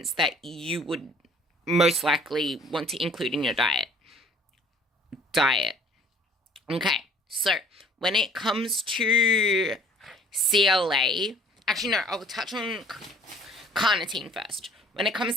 that you would most likely want to include in your diet. Okay, so when it comes to CLA, actually, no, I'll touch on carnitine first. When it comes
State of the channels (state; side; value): normal; both; correlation 0.54